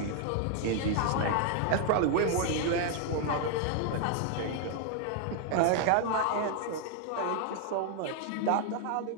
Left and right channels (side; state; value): both; different; correlation 0.00